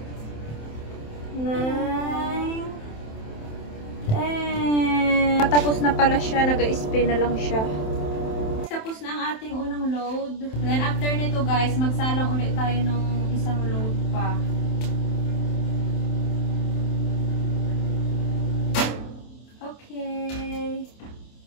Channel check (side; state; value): right; late; 27 ms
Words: pala siya, nag-spin na lang siya. Tapos na ang ating unang load. Then after nito guys, magsalang ulit tayo ng isang load pa. Okay.